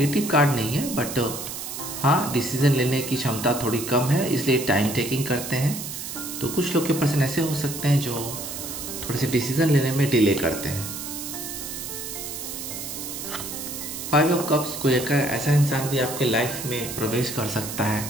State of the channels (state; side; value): noise; right; hiss, 7 dB below the sound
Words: कार्ड नहीं है, बट हाँ, डिसीजन लेने की क्षमता थोड़ी कम है, इसलिए टाइम टेकिंग करते हैं। तो कुछ लोग के पर्सन ऐसे हो सकते हैं जो थोड़े से डिसीजन लेने में डिले करते हैं। 5 ऑफ कप्स, कोई एक ऐसा इंसान भी आपके लाइफ में प्रवेश कर सकता है